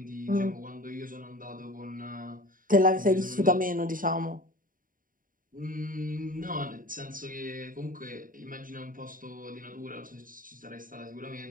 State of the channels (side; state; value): left; late; 0.40 ms